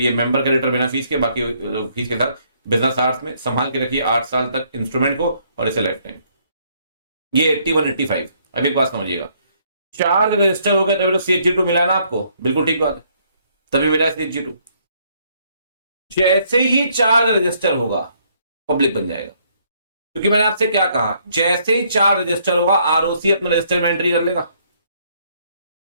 मेंबर क्रेडिटर बिना फीस के, बाकी फीस के साथ, बिजनेस आवर्स में संभाल के रखिए 8 साल तक इंस्ट्रूमेंट को और इसे लाइफ टाइम। ये 81 85। अब एक बात समझिएगा, चार्ज रजिस्टर हो गए तभी तो CH2 मिला है ना आपको, बिल्कुल ठीक बात है, तभी मिला है CH2। जैसे ही चार्ज रजिस्टर होगा पब्लिक बन जाएगा, क्योंकि मैंने आपसे क्या कहा, जैसे ही चार्ज रजिस्टर होगा ROC अपने रजिस्टर में एंट्री कर लेगा।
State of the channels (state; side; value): inverted; both; correlation -0.68